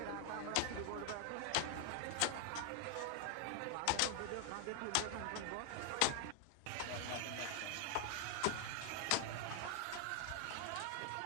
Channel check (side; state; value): both; different; correlation 0.00